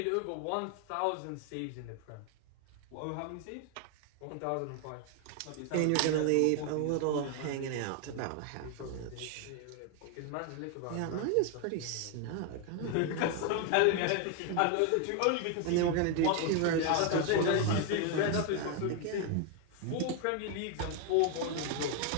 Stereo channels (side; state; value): both; different; correlation 0.01